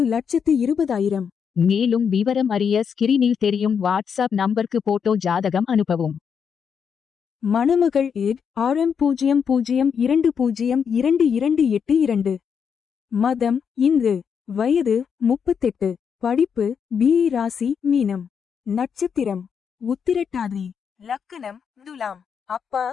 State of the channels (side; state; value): right; quieter; 6.9 dB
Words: மேலும் விவரம் அறிய ஸ்கிரீனில் தெரியும் வாட்ஸ்அப் நம்பருக்கு போட்டோ ஜாதகம் அனுப்பவும். மணமகள் ஏட் RM00222282. மதம் இந்து. வயது 38. படிப்பு BE. ராசி மீனம். நட்சத்திரம் உத்திரட்டாதி. லக்கணம் துலாம். அப்பா